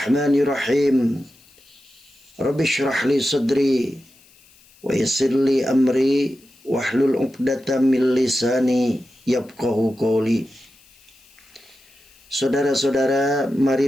Rabbi syrah li sadri wa yassir li amri wahlul 'uqdatam min lisani yafqahu qawli. Saudara-saudara,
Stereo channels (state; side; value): noise; left; hiss, 28 dB below the sound